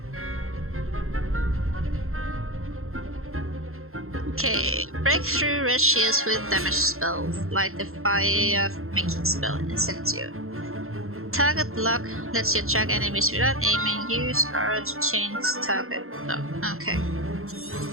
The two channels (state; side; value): late; left; 0.62 ms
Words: Okay. Break through red shields with damage spells, like the fire making spell Incendio. Target lock lets you attack enemies without aiming. Use R to change target lock. Okay.